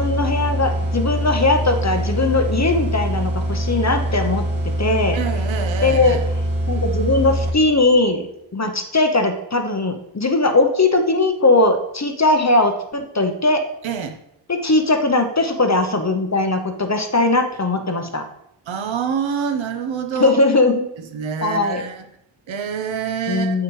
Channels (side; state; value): both; normal; correlation -0.06